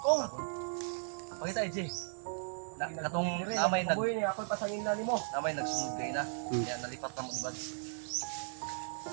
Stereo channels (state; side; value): silent; left; digital silence